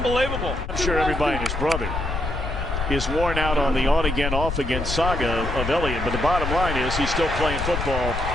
I'm sure everybody and his brother is worn out on the on-again, off-again saga of Elliott, but the bottom line is he's still playing football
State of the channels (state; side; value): noise; left; rumble, 4 dB below the sound